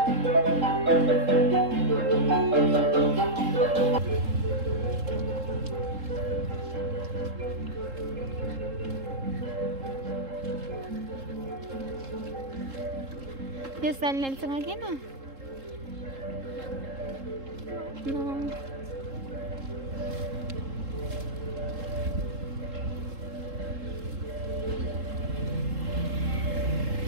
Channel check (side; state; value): left; late; 3.7 ms